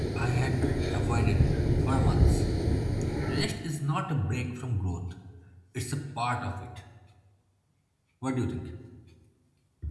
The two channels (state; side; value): identical; both; correlation 1.00